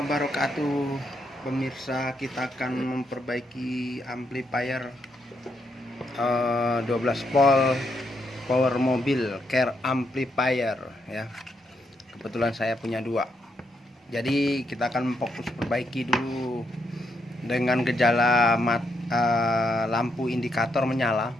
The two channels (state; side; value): normal; both; correlation 0.78